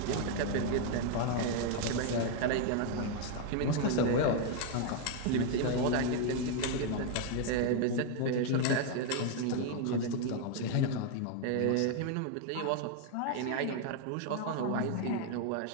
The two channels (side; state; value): both; different; correlation 0.01